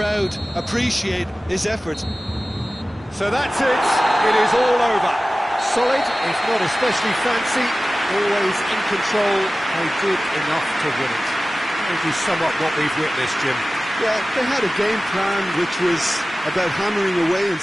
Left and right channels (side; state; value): both; normal; correlation 0.96